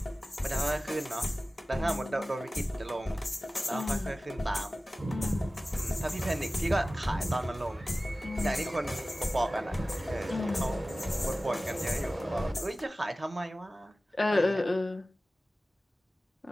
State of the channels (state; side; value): normal; both; correlation 0.96